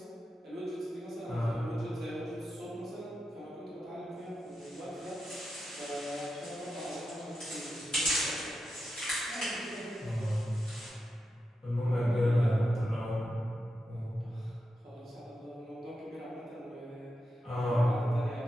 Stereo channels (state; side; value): normal; both; correlation 0.88